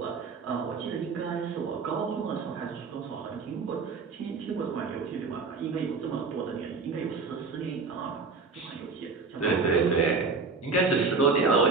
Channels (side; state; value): left; quieter; 4.4 dB